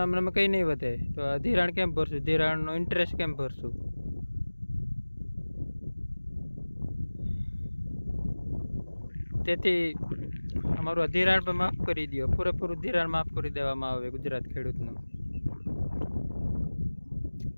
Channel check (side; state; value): both; inverted; correlation -1.00